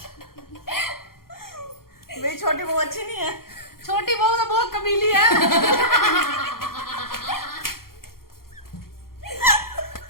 भाई छोटी बहू अच्छी नहीं है? छोटी बहू तो बहुत कमीली है।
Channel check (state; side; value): late; right; 0.93 ms